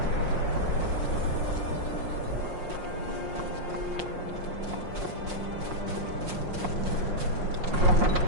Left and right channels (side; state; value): left; late; 5.6 ms